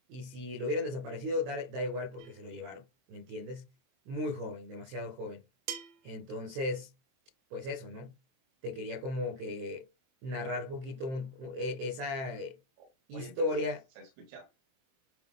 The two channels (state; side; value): late; left; 23 ms